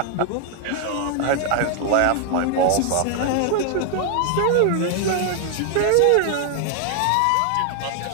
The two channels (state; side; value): different; both; correlation 0.00